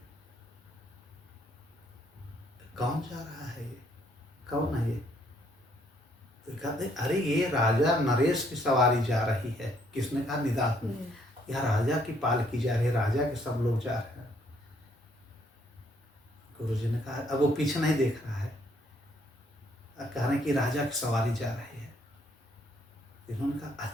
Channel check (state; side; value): normal; both; correlation 0.68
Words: कौन जा रहा है ये, कौन है ये? तो कहते हैं, अरे ये राजा नरेश की सवारी जा रही है। किसने कहा? निदात ने। यह राजा की पालकी जा रही है, राजा के सब लोग जा रहे हैं। गुरु जी ने कहा, अब वो पीछे नहीं देख रहा है, कह रहे हैं कि राजा की सवारी जा रही है। इन्होंने कहा,